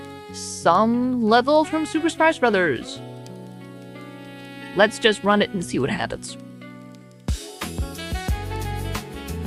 Some level from Super Smash Brothers. Let's just run it and see what happens.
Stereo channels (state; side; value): identical; both; correlation 1.00